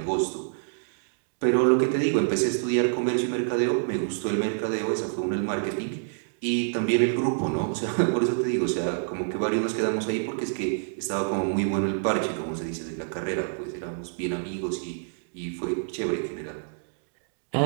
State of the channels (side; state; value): left; silent; digital silence